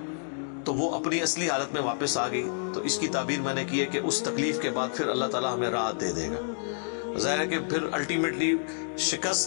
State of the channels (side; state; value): right; silent; digital silence